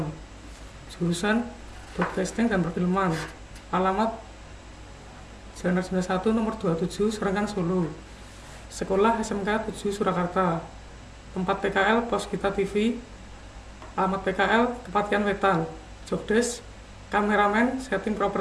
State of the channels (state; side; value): identical; both; correlation 1.00